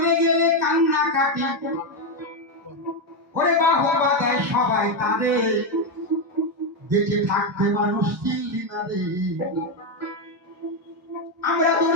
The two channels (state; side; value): normal; both; correlation 0.07